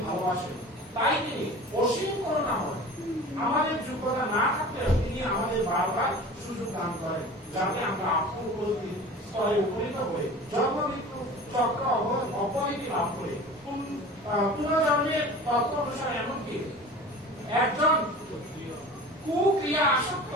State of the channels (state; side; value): normal; both; correlation 0.39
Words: ভালোবাসেন, তাই তিনি অসীম করুণাময়। আমাদের যোগ্যতা না থাকলেও তিনি আমাদের বারবার সুযোগ দান করেন, যাতে আমরা আত্ম-উপলব্ধির স্তরে উপনীত হয়ে জন্ম মৃত্যু চক্র অপরিধি লাভ করে পুনর্জন্মের তত্ত্ব অনুসারে, এমনকি একজন কুক্রিয়া আসক্ত